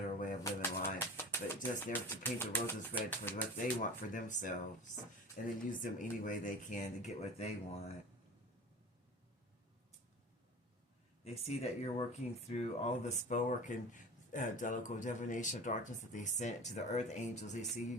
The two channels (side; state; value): both; normal; correlation 0.36